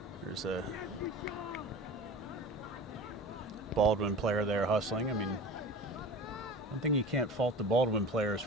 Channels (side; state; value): both; normal; correlation 0.36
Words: there's a Baldwin player there hustling. I mean, one thing you can't fault the Baldwin players